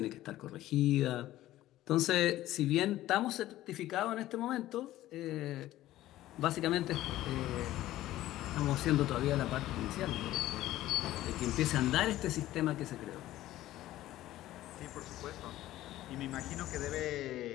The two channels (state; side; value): quieter; right; 14.9 dB